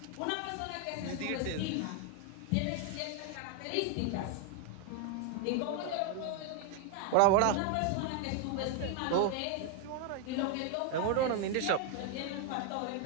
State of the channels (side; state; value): both; different; correlation 0.01